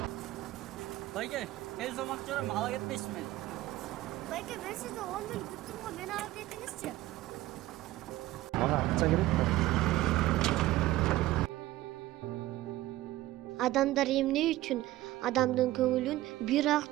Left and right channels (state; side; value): quieter; left; 16.3 dB